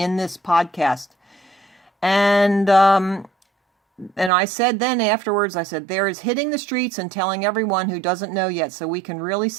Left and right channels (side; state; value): left; drops out; at 4.3 s